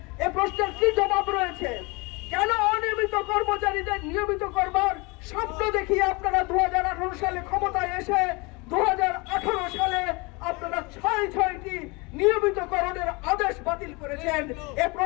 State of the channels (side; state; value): right; quieter; 27.0 dB